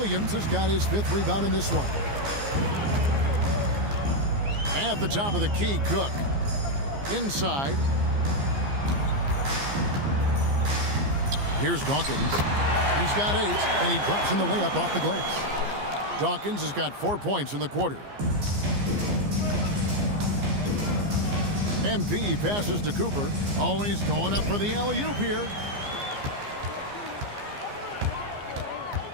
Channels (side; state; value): left; late; 15 ms